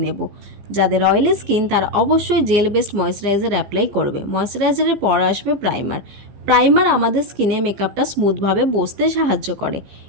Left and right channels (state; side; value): late; left; 15 ms